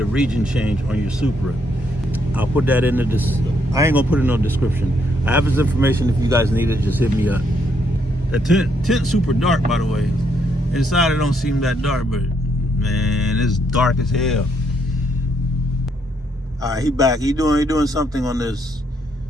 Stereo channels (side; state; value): both; normal; correlation 0.74